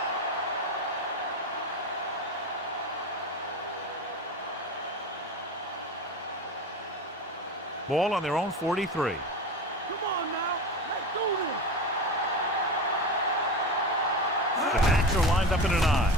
Ball on their own 43. Come on now. Let's do this. The backs are lined up in an I.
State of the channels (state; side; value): normal; both; correlation 0.26